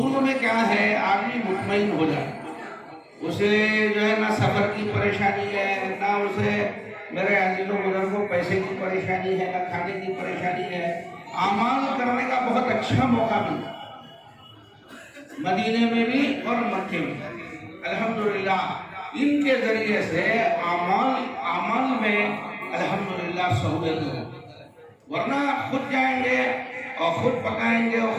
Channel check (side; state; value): both; identical; correlation 1.00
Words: میں کیا ہے آدمی مطمئن ہو جائے، اسے جو ہے نہ سفر کی پریشانی ہے، نہ اسے میرے عزیزوں بزرگوں پیسے کی پریشانی ہے، نہ کھانے کی پریشانی ہے، اعمال کرنے کا بہت اچھا موقع ملا مدینے میں بھی اور مکے میں۔ الحمدللہ ان کے ذریعے سے اعمال میں الحمدللہ سہولت ہو، ورنہ خود جائیں گے اور خود پکائیں گے اور